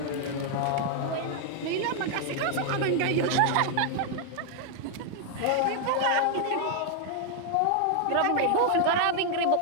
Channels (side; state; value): both; different; correlation 0.00